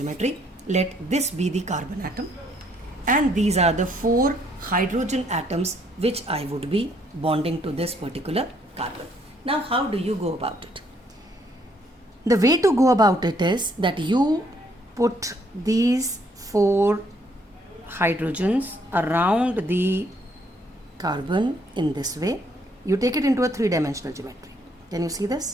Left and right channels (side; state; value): both; normal; correlation 0.68